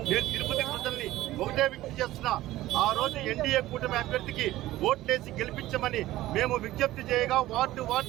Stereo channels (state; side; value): quieter; left; 15.9 dB